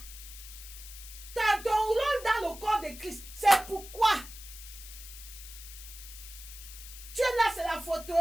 Tu as ton rôle dans le corps de Christ. C'est pourquoi? Tu es là, c'est la photo.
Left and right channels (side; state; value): left; noise; hiss, 14 dB below the sound